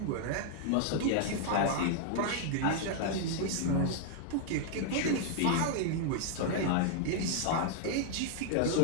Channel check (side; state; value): both; different; correlation -0.01